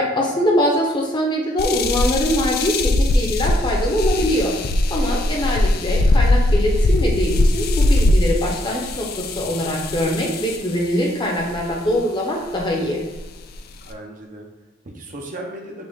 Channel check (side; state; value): both; normal; correlation 0.71